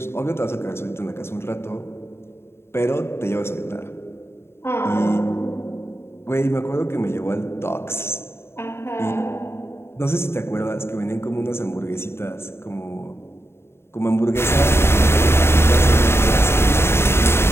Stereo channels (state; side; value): late; right; 0.12 ms